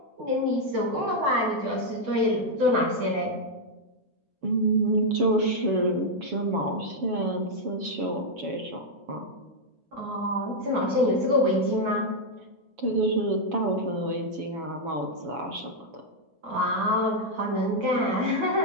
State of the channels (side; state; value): left; late; 7.4 ms